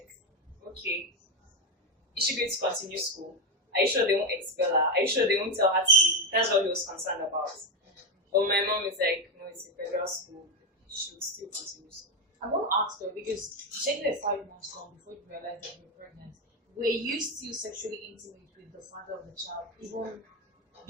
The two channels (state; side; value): normal; both; correlation 0.09